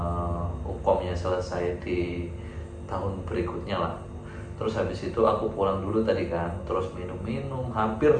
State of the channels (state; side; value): identical; both; correlation 1.00